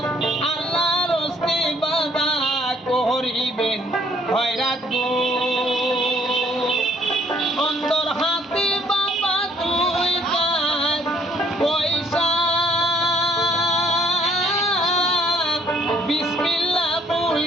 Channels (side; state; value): both; normal; correlation 0.64